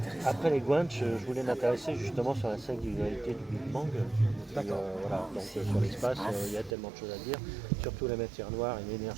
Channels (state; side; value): drops out; left; at 6.8 s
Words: Après les Guanches, je voulais m'intéresser justement sur la singularité du Big Bang. D'accord. Voilà, donc sur l'espace, il y a tellement de choses à dire, surtout la matière noire et